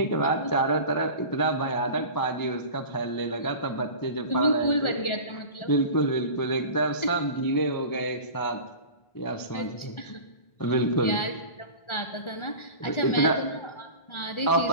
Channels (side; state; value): right; late; 1.4 ms